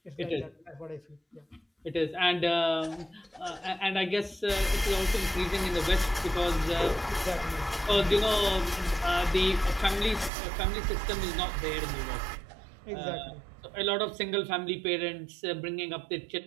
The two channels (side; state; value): left; drops out; at 10.3 s